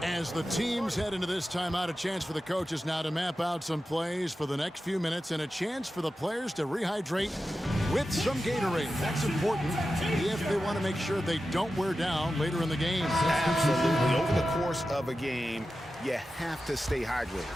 As the teams head into this timeout, a chance for the coaches now to map out some plays for the next few minutes and a chance for the players to rehydrate with some Gatorade. That's important if they want to make sure they don't wear down later in the game. Absolutely. Over the course of a game, you have to stay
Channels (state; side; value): normal; both; correlation 0.92